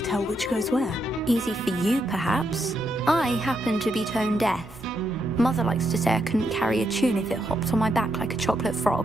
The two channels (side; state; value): both; normal; correlation 0.80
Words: tell which goes where? Easy for you, perhaps. I happen to be tone deaf. Mother likes to say I couldn't carry a tune if it hopped on my back like a chocolate